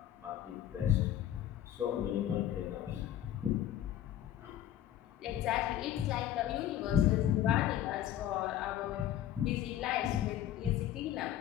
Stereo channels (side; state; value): right; quieter; 11.6 dB